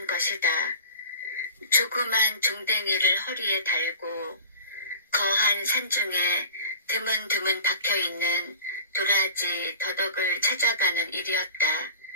것이다. 조그만 종댕이를 허리에 달고 거한 산중에 드문드문 박혀있는 도라지 더덕을 찾아가는 일이었다.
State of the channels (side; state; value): both; inverted; correlation -0.40